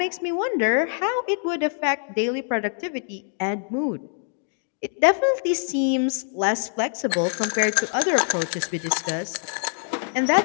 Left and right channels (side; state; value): right; silent; digital silence